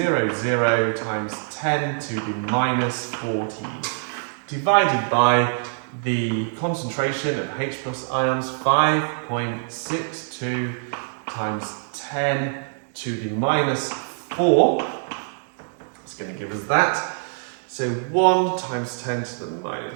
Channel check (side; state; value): left; silent; digital silence